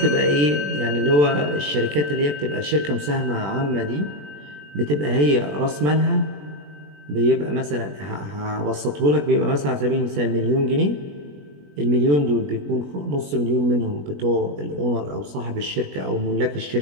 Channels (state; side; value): late; left; 21 ms